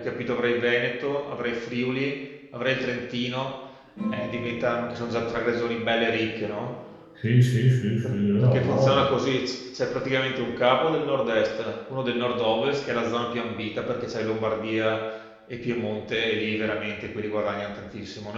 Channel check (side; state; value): both; identical; correlation 1.00